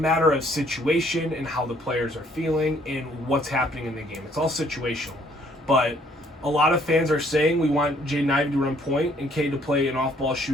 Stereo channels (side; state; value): both; normal; correlation 0.64